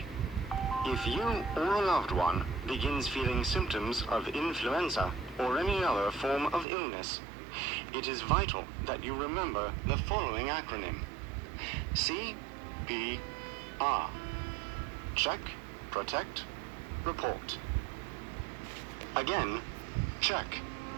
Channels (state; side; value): drops out; left; at 6.7 s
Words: If you or a loved one begins feeling symptoms of influenza or any other form of illness, it is vital that you remember the following acronym: CPR. Check, protect, report. Again, check,